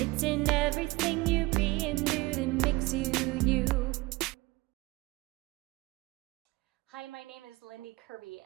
in everything you be and do that makes you you. Hi, my name is Lindy Kerby,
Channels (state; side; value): quieter; left; 22.0 dB